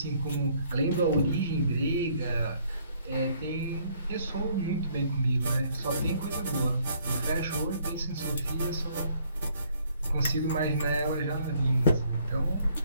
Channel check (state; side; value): inverted; both; correlation -0.65